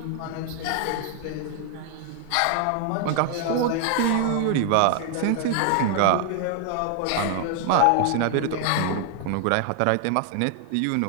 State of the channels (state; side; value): different; both; correlation 0.00